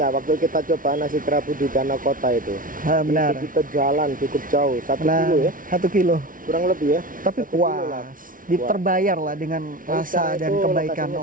waktu kita coba nasi kerabu di Danau Kota itu? Benar. Itu kita jalan cukup jauh, 1 kilo ya, 1 kilo. kurang lebih ya. Tapi 1 kilo lah. puas, terbayar lah dengan rasa Sekarang dan itu kebaikan lokasinya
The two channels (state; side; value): late; left; 0.39 ms